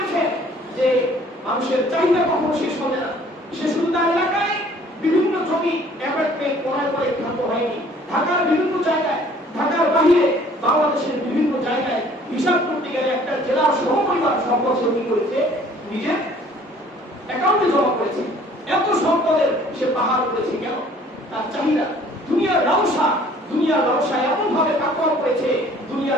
যে মানুষের চাহিদা কখনো শেষ হবে না। সে শুধু তার এলাকায় বিভিন্ন জমি অ্যাপার্টমেন্ট ক্রয় করে থাকতে হয়নি। ঢাকার বিভিন্ন জায়গায়, ঢাকার বাইরে বাংলাদেশের বিভিন্ন জায়গায় হিসাব করতে গেলে একটা জেলার সমপরিমাণ সম্পদ সে কি করেছে? নিজের অ্যাকাউন্টে জমা করেছে। এত সম্পদের সে পাহাড় করেছে কেন? তার চাহিদা, দুনিয়ার লালসা, দুনিয়ার লালসা এমন ভাবে কাকড় করেছে,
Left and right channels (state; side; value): normal; both; correlation 0.55